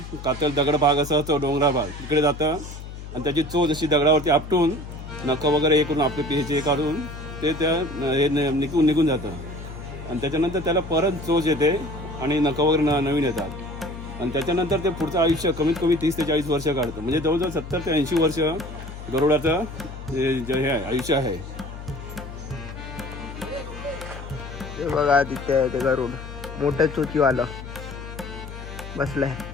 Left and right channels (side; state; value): left; noise; hum, 11 dB below the sound